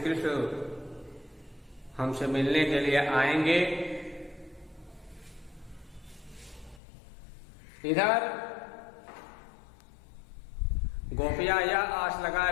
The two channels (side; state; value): right; drops out; at 6.8 s